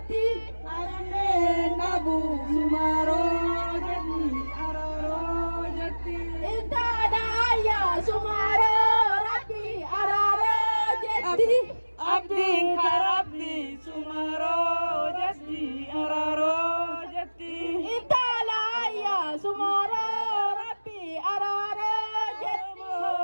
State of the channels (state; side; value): inverted; both; correlation -1.00